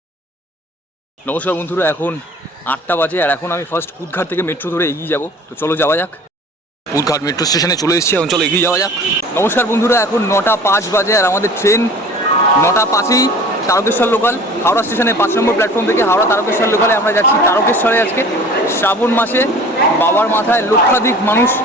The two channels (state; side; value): normal; both; correlation 0.44